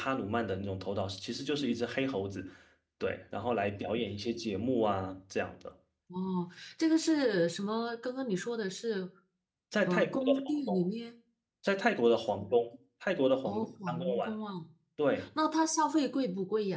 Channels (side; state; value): both; identical; correlation 1.00